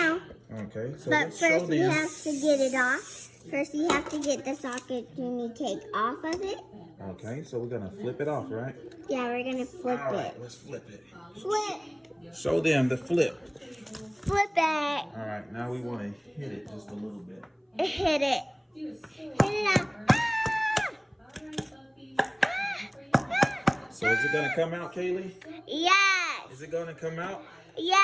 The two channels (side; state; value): both; identical; correlation 1.00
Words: Okay, so But let's show first we them. have to get it off. First you have to get the Sakatumi cake off of it. Okay, so we're gonna flip it off, right? Yeah, we're gonna flip All right, it. let's flip it. Flip! Show them the flip. Flip it! All right, now we want to hit it just a little bit. Hit it. Hit it up. Ah! So is it gonna come out, Kaylee? Yes! Is it gonna come out?